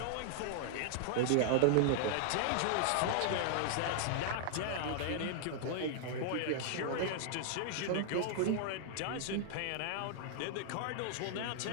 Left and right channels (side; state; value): both; different; correlation -0.01